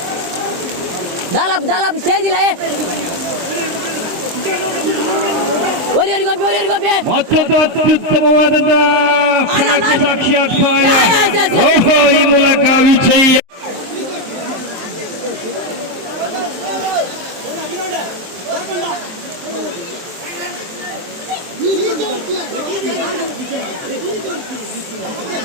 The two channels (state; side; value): late; left; 23 ms